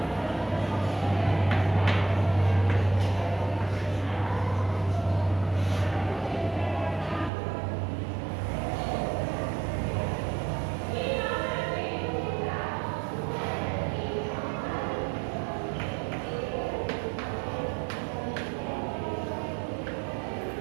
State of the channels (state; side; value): drops out; left; at 7.3 s